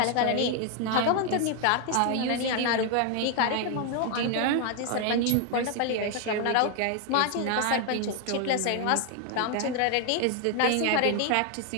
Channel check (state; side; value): different; both; correlation 0.00